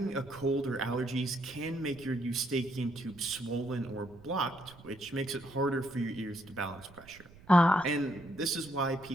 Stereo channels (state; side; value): noise; right; rumble, 22 dB below the sound